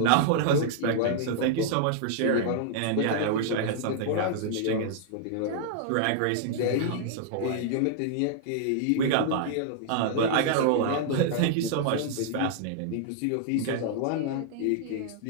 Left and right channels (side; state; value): both; different; correlation -0.01